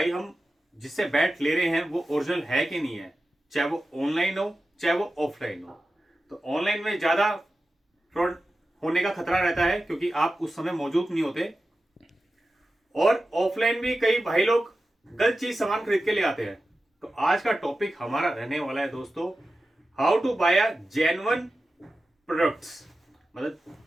हम जिससे बैट ले रहे हैं वो ओरिजिनल है कि नहीं है, चाहे वो ऑनलाइन हो चाहे वो ऑफलाइन हो, तो ऑनलाइन में ज़्यादा फ्रॉड होने का खतरा रहता है क्योंकि आप उस समय मौजूद नहीं होते, और ऑफलाइन भी कई भाई लोग गलत चीज सामान खरीद के ले आते हैं। तो आज का टॉपिक हमारा रहने वाला है दोस्तों, how to buy a genuine products. मतलब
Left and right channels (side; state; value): both; normal; correlation 0.93